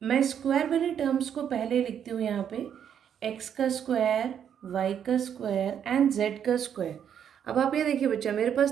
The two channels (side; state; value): left; quieter; 8.7 dB